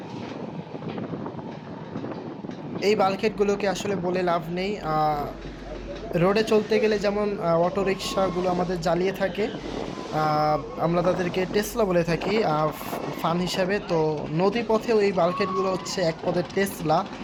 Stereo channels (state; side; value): identical; both; correlation 1.00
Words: এই বাল্কহেডগুলোকে আসলে বলে লাভ নেই। রোডে চলতে গেলে যেমন অটো রিক্সাগুলো আমাদের জ্বালিয়ে থাকে, আমরা তাদেরকে টেসলা বলে থাকি ফান হিসাবে। তো নদী পথেও এই বাল্কহেডগুলো হচ্ছে এক পদের টেসলা।